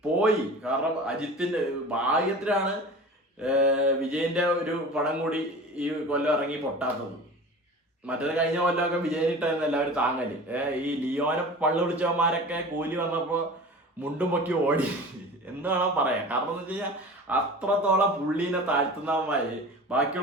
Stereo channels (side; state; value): both; normal; correlation 0.37